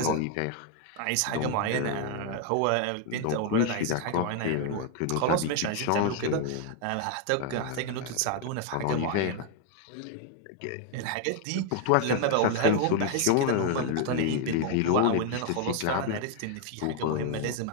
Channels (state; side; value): different; both; correlation 0.01